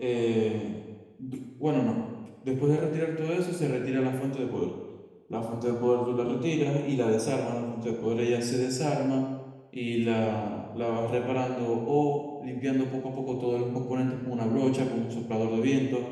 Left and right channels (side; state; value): both; identical; correlation 1.00